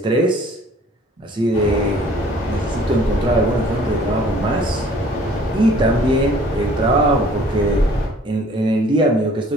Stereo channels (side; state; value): both; normal; correlation 0.54